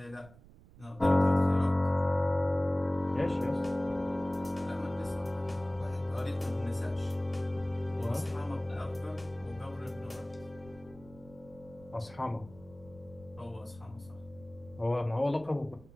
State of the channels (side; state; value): right; noise; rumble, 22 dB below the sound